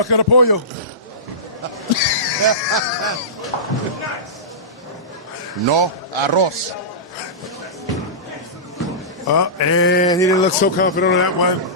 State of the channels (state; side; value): normal; both; correlation -0.19